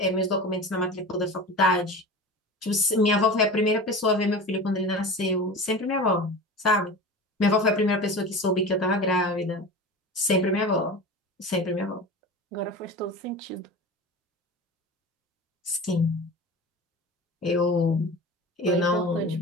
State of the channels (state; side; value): normal; both; correlation 0.32